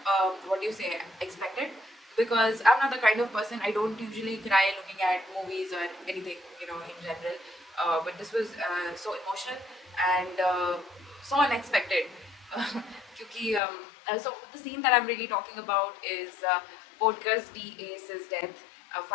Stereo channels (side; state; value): right; drops out; at 13.6 s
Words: what do you say expected, because I'm not the kind of person, I don't usually cry looking at movies or anything, in general. But this was so emotional and so unexpected. क्योंकि so the scene that I'm really talking about is Podcast D Ace's death,